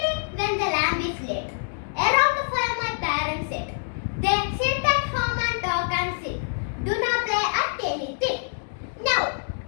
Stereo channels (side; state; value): right; silent; digital silence